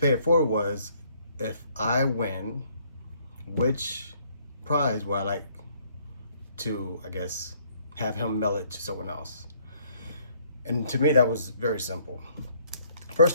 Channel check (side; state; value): both; inverted; correlation -0.64